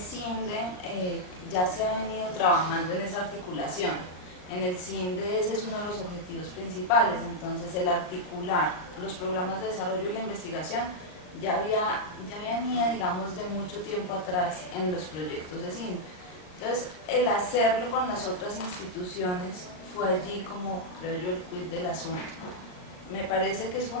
ya se ha venido trabajando en esa articulación. En el CINDE ese es uno de los objetivos principales, entonces el articular los programas de desarrollo y la investigación ya venía, digamos, de mucho tiempo atrás en los proyectos de CINDE. Entonces, el hacerlo con las otras instituciones fue allí como, creo yo, el quid del asunto. Me parece que es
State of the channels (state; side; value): late; right; 38 ms